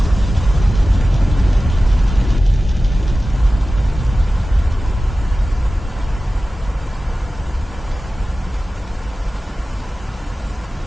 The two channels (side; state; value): both; normal; correlation 0.95